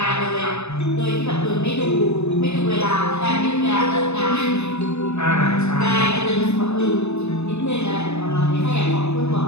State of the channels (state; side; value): late; right; 0.81 ms